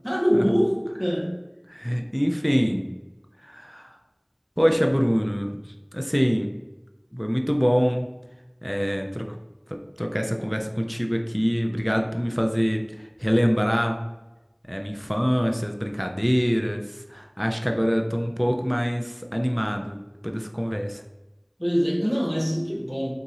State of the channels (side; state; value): both; identical; correlation 1.00